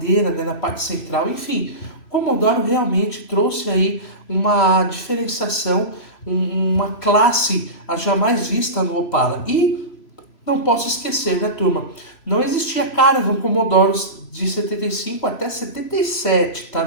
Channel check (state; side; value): late; right; 3.0 ms